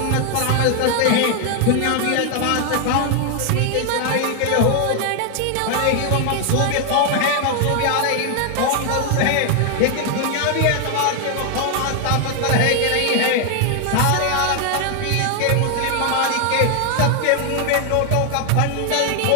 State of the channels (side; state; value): both; different; correlation 0.00